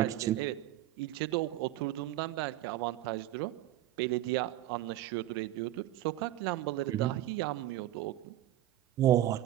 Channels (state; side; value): quieter; left; 14.1 dB